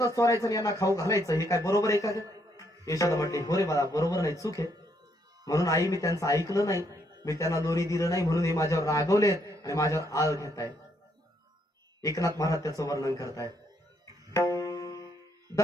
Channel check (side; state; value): both; normal; correlation 0.73